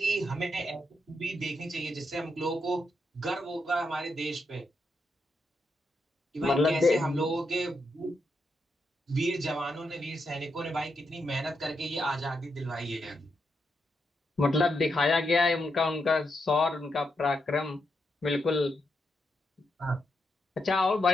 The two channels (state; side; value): normal; both; correlation 0.82